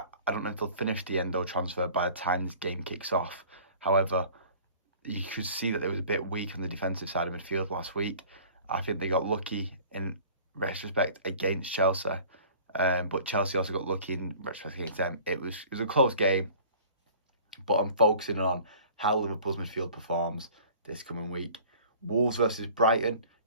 don't know if they'll finish the Endo transfer by the time this game kicks off. However, you could see that they was a bit weak on the defensive side of midfield last week. I think they got lucky in retrospect against Chelsea. But Chelsea also got lucky in retrospect against them. It was a close game. But I'm focusing on how Liverpool's midfield performs this coming week. Wolves versus Brighton.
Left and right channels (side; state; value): both; inverted; correlation -0.47